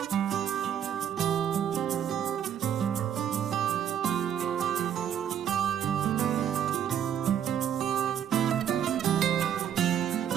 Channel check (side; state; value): left; quieter; 9.4 dB